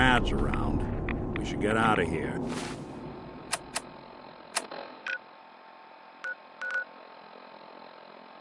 around. We should get out of here.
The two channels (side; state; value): both; identical; correlation 1.00